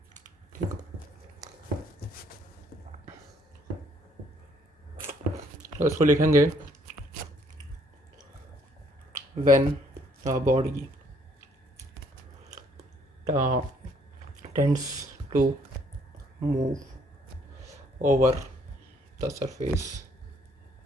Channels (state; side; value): normal; both; correlation 0.65